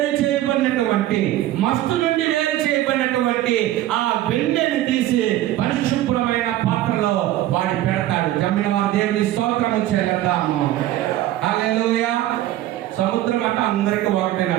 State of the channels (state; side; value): quieter; left; 14.2 dB